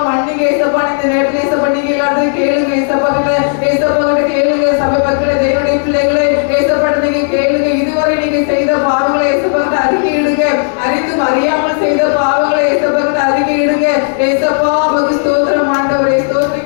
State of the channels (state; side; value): silent; right; digital silence